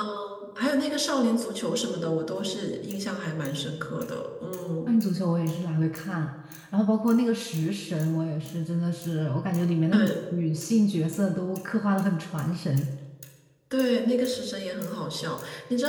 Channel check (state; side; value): identical; both; correlation 1.00